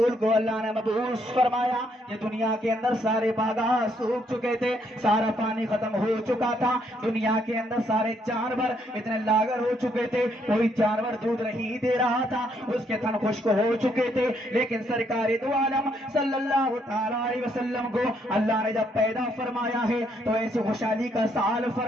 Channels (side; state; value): both; normal; correlation 0.72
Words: کو اللہ نے مبعوث فرمایا یہ دنیا کے اندر سارے باغات سوکھ چکے تھے. سارا پانی ختم ہو چکا تھا. دنیا کے اندر سارے جانور اتنے لاغر ہو چکے تھے. کوئی جانور دودھ نہیں دے رہا تھا. اس کے تھن خشک ہو چکے تھے. لیکن سرکار دو عالم صلی اللہ تعالی علیہ وسلم کو اللہ نے جب پیدا فرمایا ہے تو ایسی خوشحالی کا سال